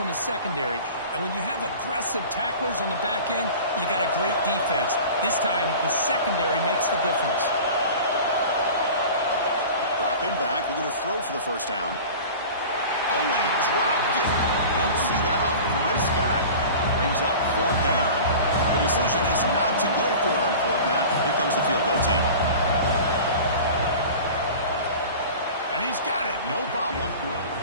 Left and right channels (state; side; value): inverted; both; correlation -0.38